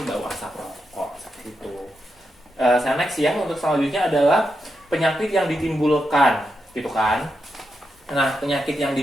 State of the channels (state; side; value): normal; both; correlation 0.85